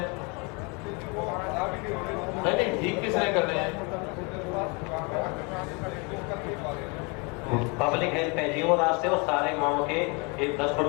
नहीं, ठीक किसने करने हैं? पब्लिक हेल्थ है जी, वो रास्ते वो सारे गाँव के 10 फुट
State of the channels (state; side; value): quieter; right; 31.0 dB